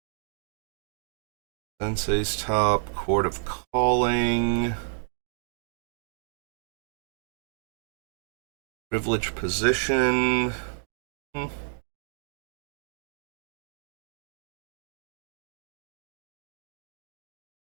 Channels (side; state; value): left; silent; digital silence